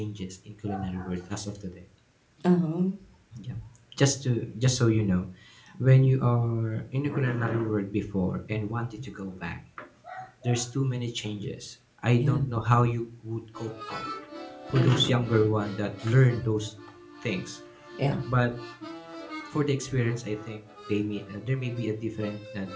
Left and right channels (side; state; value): both; identical; correlation 1.00